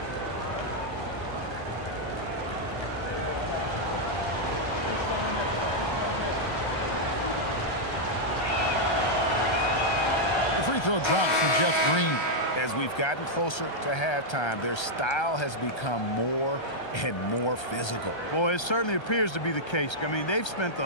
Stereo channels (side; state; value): right; late; 1.3 ms